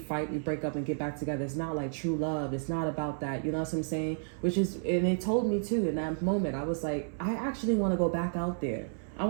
we break up and get back together. It's not like true love. It's not about that. You know what I'm saying? And it told me too in that moment, I was like, I actually want to go back out there. I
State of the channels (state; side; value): silent; left; 57 dB below the other